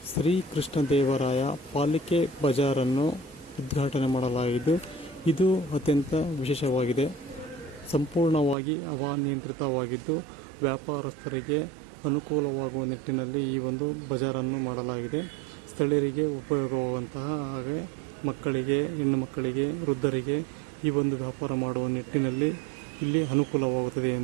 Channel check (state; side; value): drops out; left; at 8.6 s